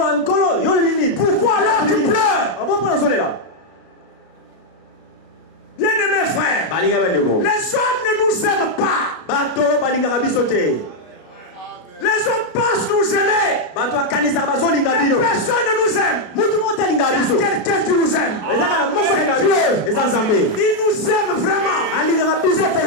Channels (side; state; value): right; late; 33 ms